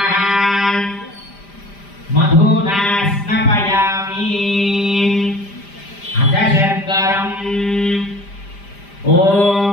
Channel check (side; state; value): right; late; 5.0 ms